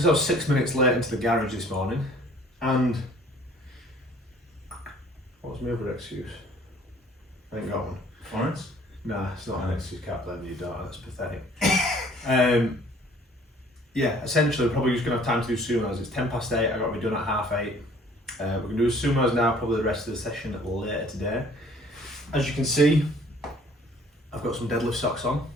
I was 6 minutes late into the garage this morning, and what was my other excuse? I ain't got one. Florence? Nah, it's not an excuse. Can't blame your daughter. That's pathetic. Yeah, essentially we're probably just gonna have time to do sumos. It's 8:10. I got to be done at 8:30. We're gonna do sumos now. Probably the rest of the session later today. As you can see, I've got some deadlift socks on.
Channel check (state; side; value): normal; both; correlation 0.55